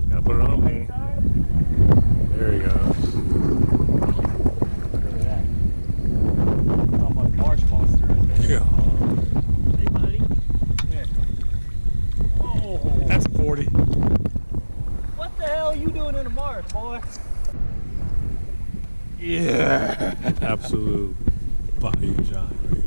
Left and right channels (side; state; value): both; inverted; correlation -1.00